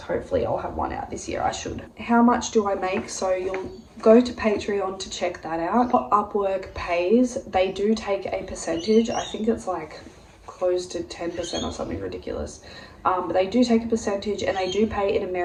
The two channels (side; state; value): both; identical; correlation 1.00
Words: I'll have one out this year. I should. How much do I make? So you'll go to Patreon to check that out. What Upwork pays, they do take a percentage. I think it's like close to 10% or something ridiculous. But they do take a percentage, and they do pay in